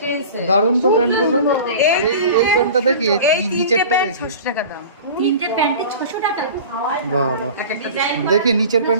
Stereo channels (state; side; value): inverted; both; correlation -0.38